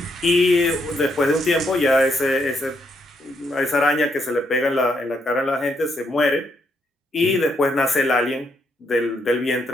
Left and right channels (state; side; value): normal; both; correlation 0.76